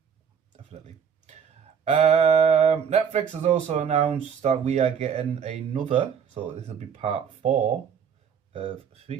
Definitely. Netflix has also announced that we are getting another, so this will be part 4 of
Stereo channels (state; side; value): quieter; left; 7.3 dB